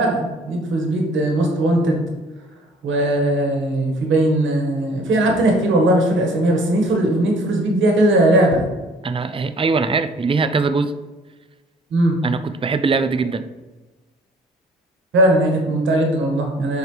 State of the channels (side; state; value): both; normal; correlation 0.54